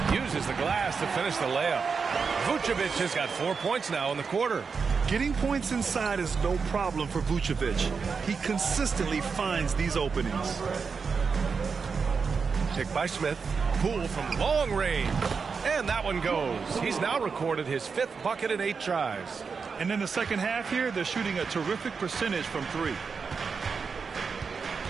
Uses the glass to finish the layup. Vucevic has got 4 points now in the quarter. Getting points inside is no problem for Vucevic. He consistently finds these openings. Pick by Smith. Poole from long range. And that one goes. He's now recorded his 5th bucket in 8 tries. And in the second half here, they're shooting a terrific percentage from 3.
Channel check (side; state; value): left; quieter; 5.4 dB